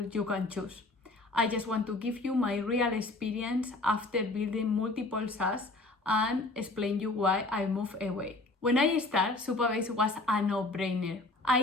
you can choose. I just want to give you my real experience after building multiple SaaS and explain you why I moved away. When I started, Supabase was a no-brainer. I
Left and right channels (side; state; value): right; quieter; 3.0 dB